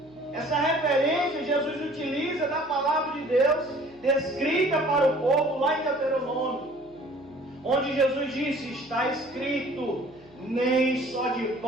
Essa referência Jesus utiliza da palavra de Deus descrita para o povo lá em Deuteronômio, onde Jesus disse: está escrito, nem só de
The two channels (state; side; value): noise; left; hum, 28 dB below the sound